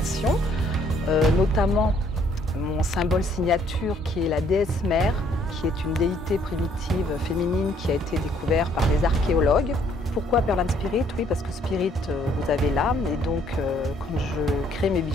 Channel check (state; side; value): normal; both; correlation 0.65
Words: notamment mon symbole signature qui est la déesse mère, qui est une déité primitive féminine qui a été découverte par des archéologues. Pourquoi Perlane Spirit? Oui, parce que Spirit, vous avez l'âme, et donc quand je crée mes